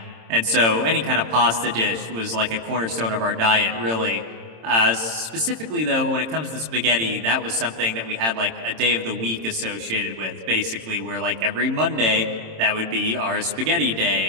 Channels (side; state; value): left; late; 26 ms